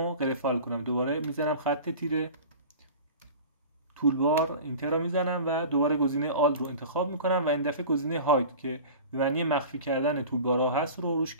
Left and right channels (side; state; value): both; inverted; correlation -0.37